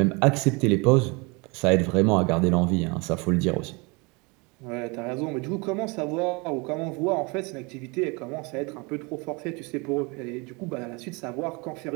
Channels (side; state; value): left; quieter; 28.5 dB